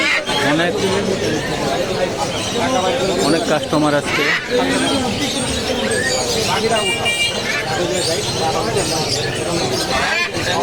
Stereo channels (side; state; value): both; identical; correlation 1.00